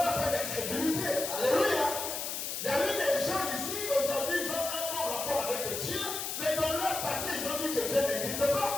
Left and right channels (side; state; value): left; noise; hiss, 4 dB below the sound